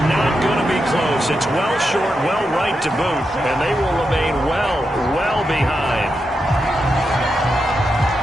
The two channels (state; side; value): normal; both; correlation 0.86